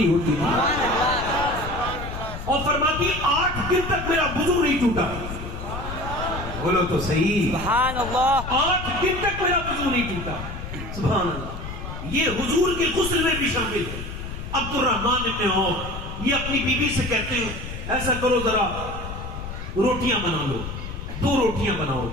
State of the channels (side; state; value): left; noise; rumble, 8 dB below the sound